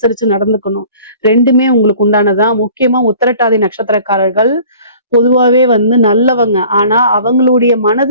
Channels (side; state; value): both; inverted; correlation -0.49